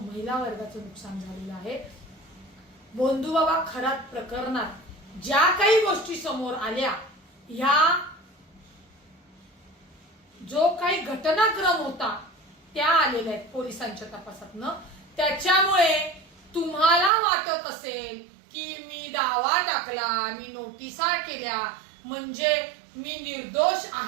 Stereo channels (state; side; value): drops out; left; at 17.1 s